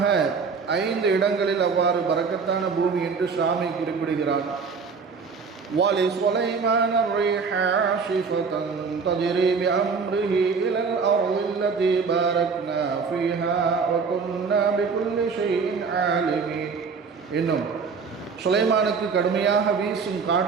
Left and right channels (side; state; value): left; quieter; 5.3 dB